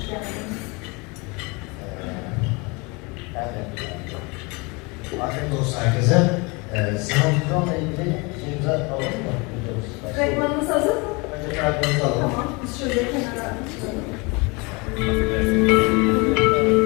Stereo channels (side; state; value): right; quieter; 28.0 dB